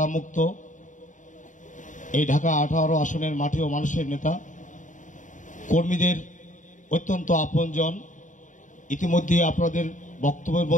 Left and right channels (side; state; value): right; late; 0.37 ms